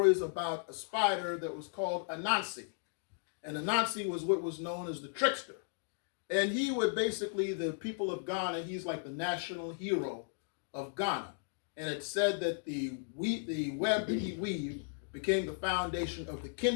about a spider that was called Anansi. And Anansi was what was known as the trickster. And he would basically, the people of Ghana, he's like the national hero of Ghana. And it said that the web that he weaved became the foundation of the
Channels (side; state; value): right; silent; digital silence